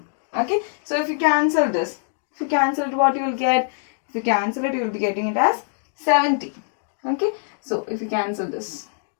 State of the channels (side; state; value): right; silent; 63 dB below the other